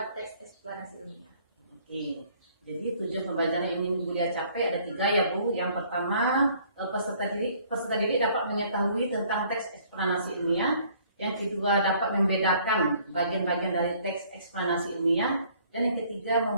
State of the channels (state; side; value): inverted; both; correlation -0.59